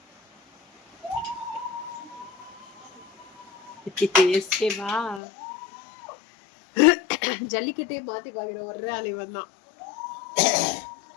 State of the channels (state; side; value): drops out; right; at 5.2 s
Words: எஸ்கேவா? ஜல்லிக்கட்டே மாத்தி பாக்குற ஒரே ஆள் இவன் தான்.